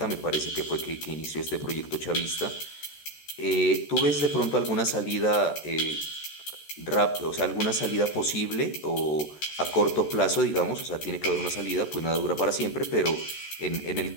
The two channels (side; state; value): right; late; 13 ms